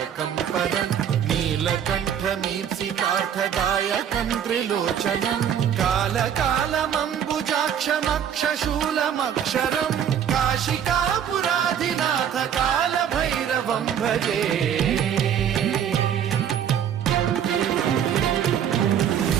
परं नीलकण्ठमीप्सितार्थदायकं त्रिलोचनं कालकालमम्बुजाक्षमक्षशूलमक्षरं काशिकापुराधिनाथ काल भैरवं भजे।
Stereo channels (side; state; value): left; quieter; 9.0 dB